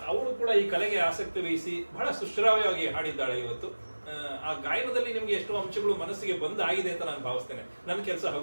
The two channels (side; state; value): both; inverted; correlation -1.00